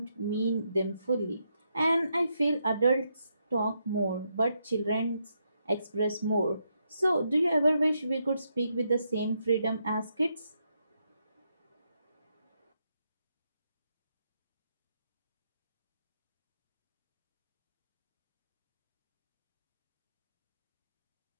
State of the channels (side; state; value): both; inverted; correlation -0.80